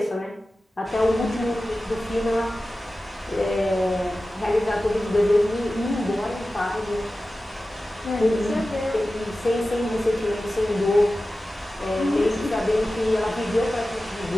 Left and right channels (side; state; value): both; normal; correlation 0.95